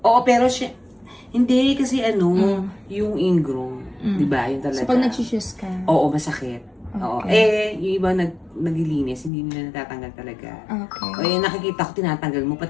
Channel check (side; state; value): right; drops out; at 9.3 s